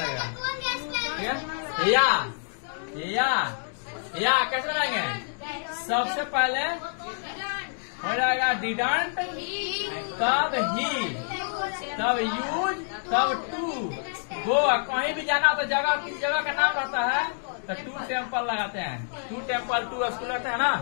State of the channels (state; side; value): silent; right; digital silence